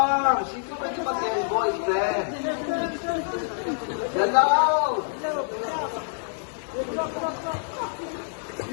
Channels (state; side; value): silent; right; digital silence